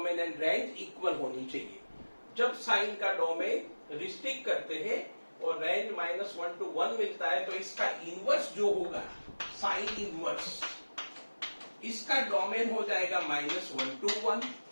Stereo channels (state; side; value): inverted; both; correlation -1.00